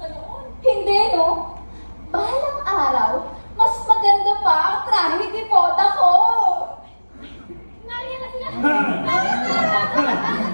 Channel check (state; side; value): inverted; both; correlation -1.00